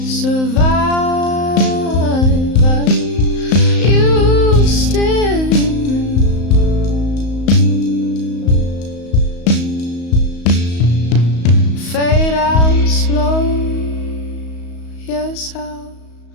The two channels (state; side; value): late; right; 35 ms